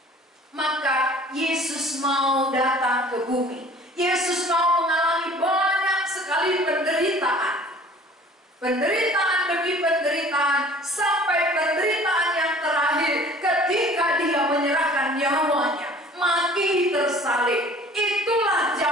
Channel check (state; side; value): normal; both; correlation 0.49